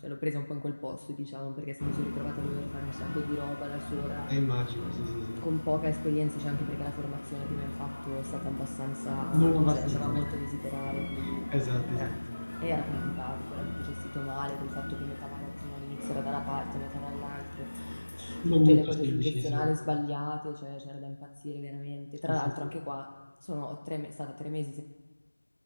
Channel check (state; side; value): inverted; both; correlation -1.00